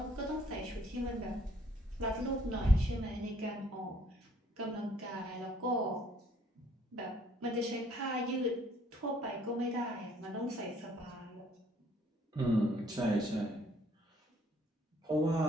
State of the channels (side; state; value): both; normal; correlation 0.63